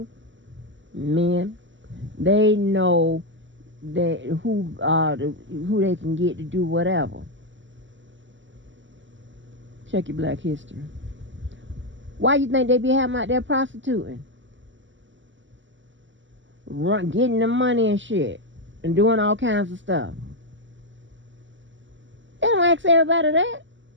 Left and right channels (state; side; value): late; left; 0.54 ms